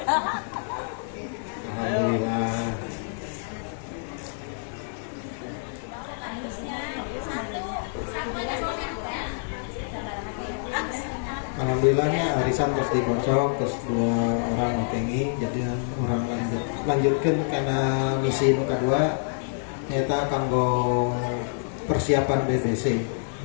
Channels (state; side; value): silent; right; 60 dB below the other